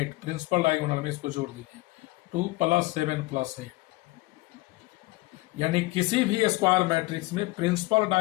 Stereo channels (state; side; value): quieter; right; 21.5 dB